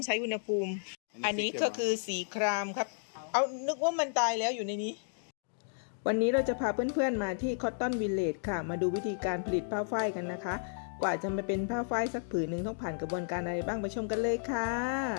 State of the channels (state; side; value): silent; right; digital silence